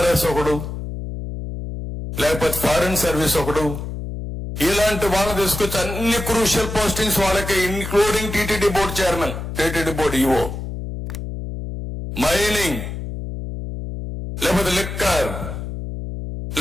ఒకడు, లేకపోతే ఫారిన్ సర్వీస్ ఒకడు, ఇలాంటి వాళ్ళని తీసుకొచ్చి అన్ని క్రూషియల్ పోస్టింగ్స్ వాళ్ళకి, including TTD board chairman, TTD board EO, mining, లేకపోతే లిక్కర్,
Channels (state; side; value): noise; left; hum, 7 dB below the sound